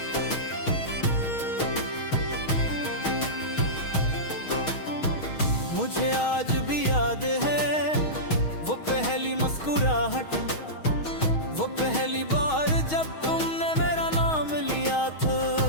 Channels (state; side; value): late; right; 6.3 ms